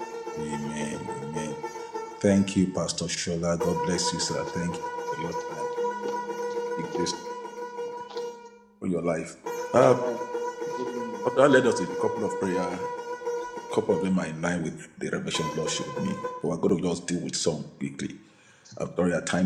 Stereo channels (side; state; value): both; identical; correlation 1.00